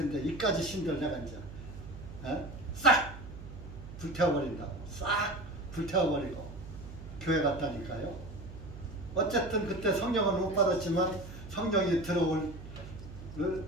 이까지 신들 내가 이제 싹 불태워버린다고. 싹 불태워버리고 교회 갔다니까요. 어쨌든 그때 성령은 못 받았지만 성령이 들어올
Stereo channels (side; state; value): right; noise; hum, 13 dB below the sound